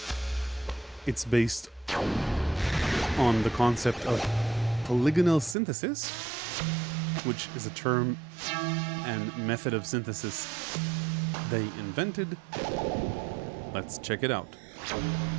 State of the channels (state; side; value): drops out; left; at 5.6 s